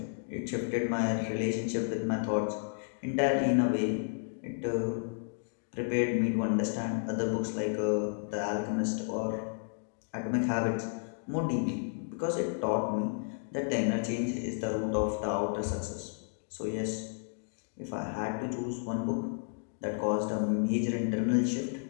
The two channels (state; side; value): silent; right; digital silence